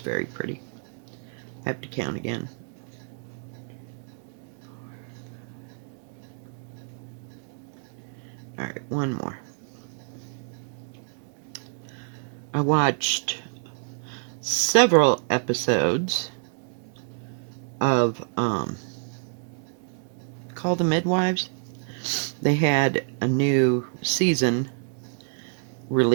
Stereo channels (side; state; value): left; silent; 60 dB below the other